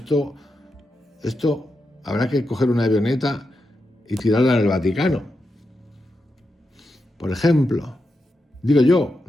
habrá que coger una avioneta y tirarla en el Vaticano. Por ejemplo, digo yo,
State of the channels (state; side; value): normal; both; correlation 0.87